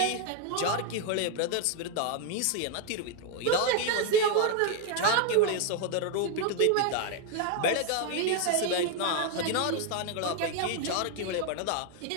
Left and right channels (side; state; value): both; different; correlation 0.01